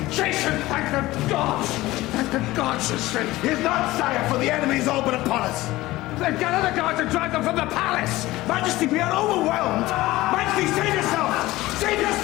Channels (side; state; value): right; quieter; 18.0 dB